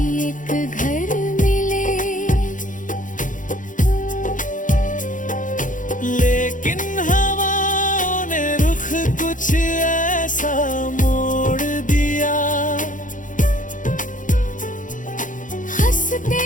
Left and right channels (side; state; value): right; late; 0.38 ms